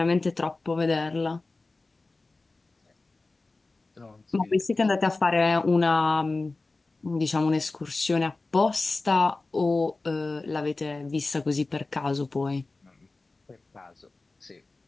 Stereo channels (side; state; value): right; quieter; 3.4 dB